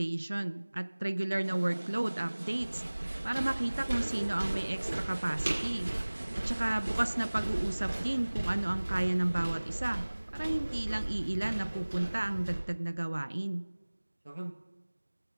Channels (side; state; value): both; inverted; correlation -1.00